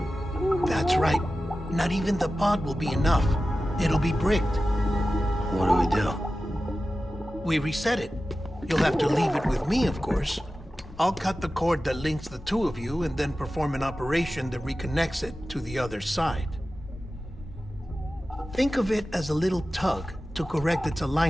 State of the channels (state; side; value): normal; both; correlation 0.94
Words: That's right. Not even the pod will be enough. It'll be bricked. What do we do? We reset it. You'll have to leave it with me, of course. I'll cut the cord that links the two of you and then perform an operation that reconnects it to the other side. Think of it as a little tug to correct its